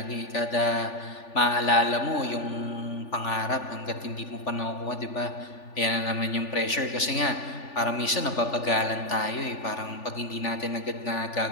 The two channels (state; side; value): late; right; 3.4 ms